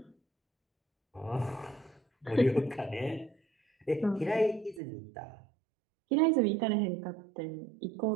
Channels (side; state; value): left; drops out; at 4.8 s